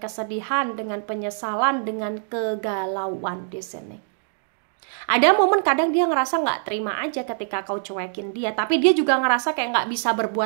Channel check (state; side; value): silent; left; digital silence